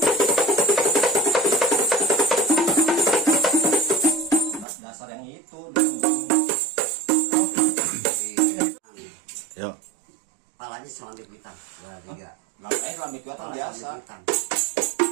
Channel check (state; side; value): drops out; left; at 4.7 s